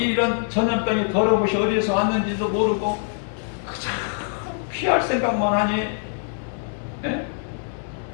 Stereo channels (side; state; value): right; silent; digital silence